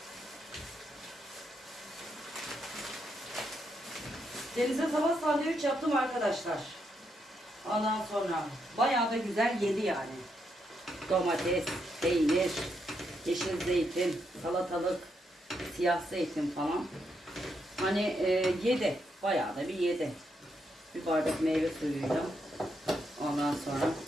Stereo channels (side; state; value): both; normal; correlation 0.79